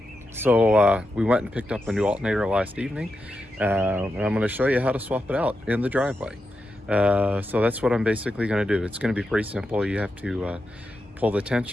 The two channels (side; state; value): both; normal; correlation 0.87